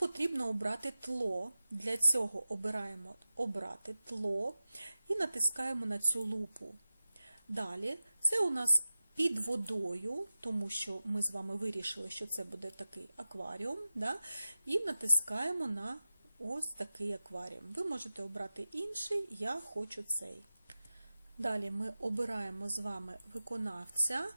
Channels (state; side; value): inverted; both; correlation -0.94